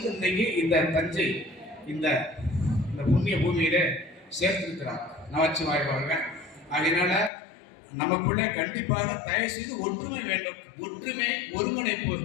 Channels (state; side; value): drops out; right; at 7.3 s